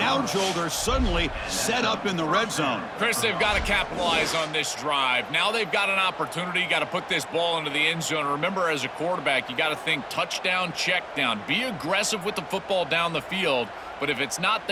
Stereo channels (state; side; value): identical; both; correlation 1.00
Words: Joel, they're suddenly set up in the red zone. Chris, they've got to capitalize on this drive. Now they've got an opportunity. You got to put this ball into the end zone. Remember, as a quarterback, you got to think touchdown, check down. Be aggressive with the football down the field. But if it's not